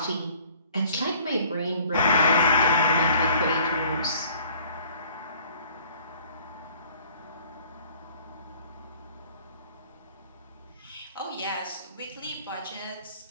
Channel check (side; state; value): both; inverted; correlation -0.54